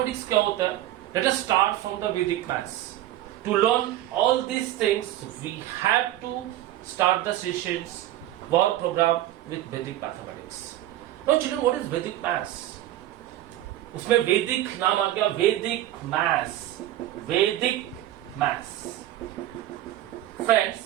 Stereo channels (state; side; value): quieter; left; 13.9 dB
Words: क्या होता है? Let us start from the Vedic maths. To learn all these things we have to start the sessions work program with Vedic mathematics. Now children, what is Vedic maths? उसमें वैदिक नाम आ गया, Vedic maths. Vedic maths